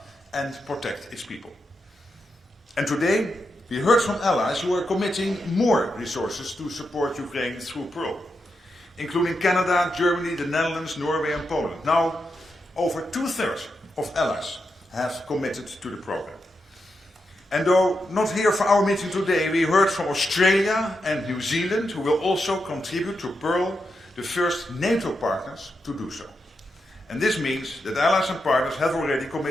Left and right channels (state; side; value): normal; both; correlation 0.86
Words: and protect its people. And today, we heard from allies who are committing more resources to support Ukraine through Pearl, including Canada, Germany, the Netherlands, Norway, and Poland. Now, over 2/3 of allies have committed to the program. And though not here for our meeting today, we heard from Australia and New Zealand, who will also contribute to Pearl, the first NATO partners to do so. And this means that allies and partners have already